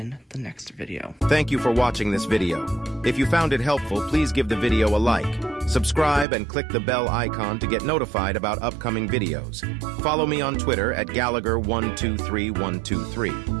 the next video. Thank you for watching this video. If you found it helpful, please give the video a like, subscribe, and click the bell icon to get notified about upcoming videos. Follow me on Twitter at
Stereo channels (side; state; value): left; drops out; at 6.2 s